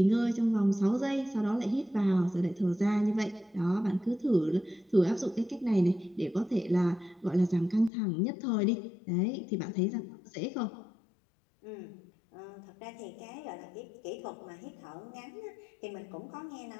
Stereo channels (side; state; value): right; drops out; at 7.9 s